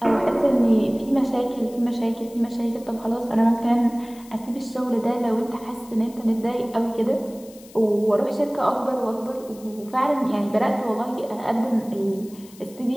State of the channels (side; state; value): left; noise; hiss, 23 dB below the sound